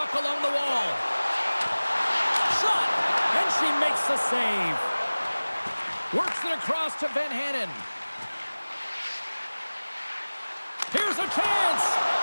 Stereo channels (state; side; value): inverted; both; correlation -1.00